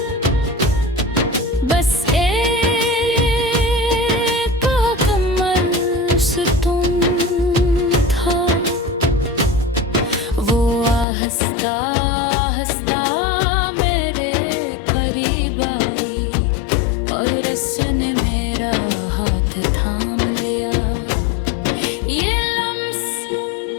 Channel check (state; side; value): drops out; right; at 11.1 s